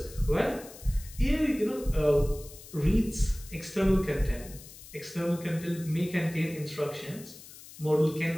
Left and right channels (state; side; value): noise; left; hiss, 17 dB below the sound